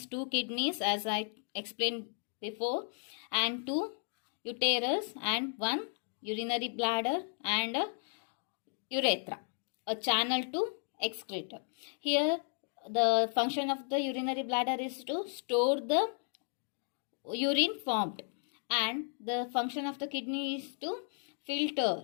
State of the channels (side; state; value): right; silent; 55 dB below the other